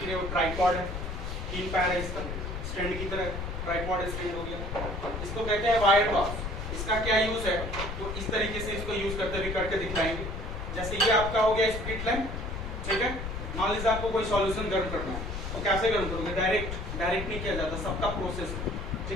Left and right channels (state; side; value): noise; left; rumble, 5 dB below the sound